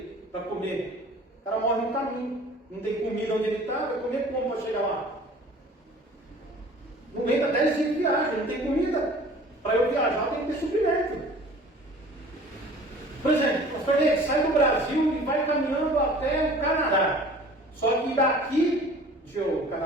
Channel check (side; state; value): both; normal; correlation 0.47